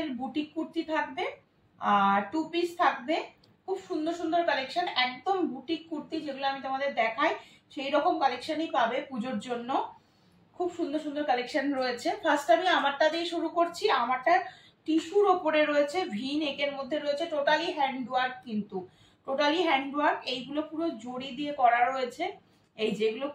বুটিক কুর্তি থাকবে আর টু পিস থাকবে। খুব সুন্দর সুন্দর কালেকশন, একদম বুটিক কুর্তি যেগুলো আমি তোমাদের দেখাই সেই রকম কালেকশনই পাবে পুজোর জন্য। খুব সুন্দর সুন্দর কালেকশন রয়েছে। ফার্স্ট আমি আমারটা দিয়ে শুরু করছি। আমারটা টিস্যুর ওপরে রয়েছে, ভি নেকের মধ্যে রয়েছে, টোটালি হ্যান্ডওয়ার্ক, কিন্তু টোটালি হ্যান্ডওয়ার্ক। এইগুলো পুরো জড়ি দিয়ে করা রয়েছে, এই যেগুলো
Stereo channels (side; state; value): both; identical; correlation 1.00